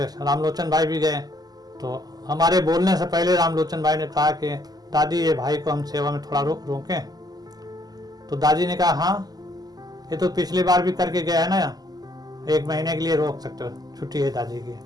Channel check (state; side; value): late; left; 0.19 ms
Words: रामलोचन भाई भी गए। तो हमारे बोलने से पहले रामलोचन भाई ने कहा कि दादी ये भाई को हम सेवा में थोड़ा रोकें। तो दादी ने कहा हाँ, ये तो पिछली बार भी करके गया है ना, 1 महीने के लिए रोक सकते हो, छुट्टी है दादी की।